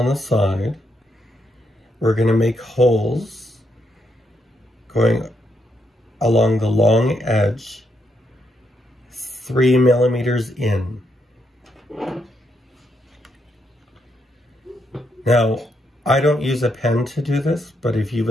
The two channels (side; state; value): both; normal; correlation 0.78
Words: the side, we're going to make holes going along the long edge 3 millimeters in. Now, I don't use a pen to do this, but if you